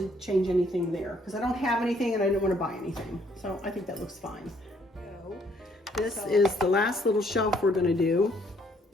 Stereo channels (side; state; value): both; normal; correlation 0.66